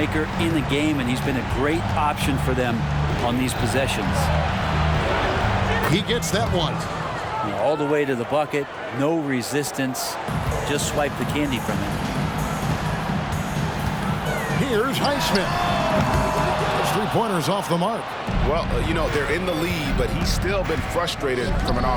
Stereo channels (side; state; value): both; identical; correlation 1.00